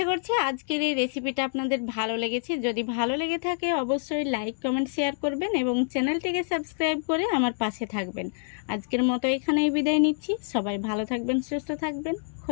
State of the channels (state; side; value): silent; right; digital silence